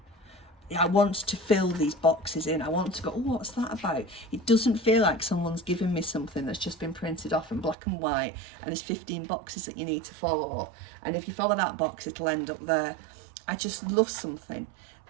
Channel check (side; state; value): left; drops out; at 7.8 s